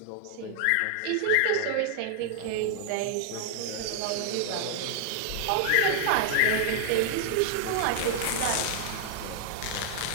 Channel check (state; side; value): different; both; correlation -0.01